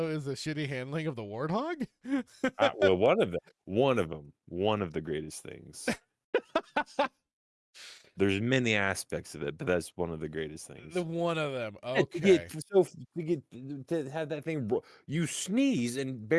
is the shitty handling of the warthog. Well, one of the greatest things. There's many aspects of it, but that's one of the greatest things. The one of them. Okay. To have that thing, you sneeze and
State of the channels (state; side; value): identical; both; correlation 1.00